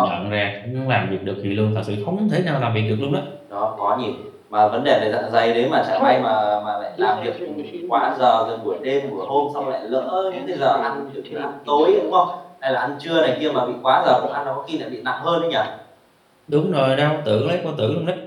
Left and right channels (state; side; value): identical; both; correlation 1.00